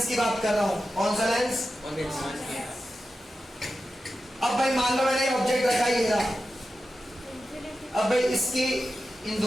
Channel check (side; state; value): both; normal; correlation 0.92